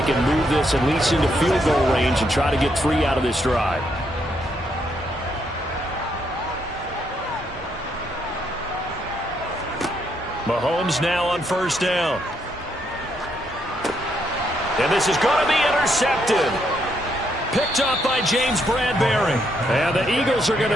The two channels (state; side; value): normal; both; correlation 0.75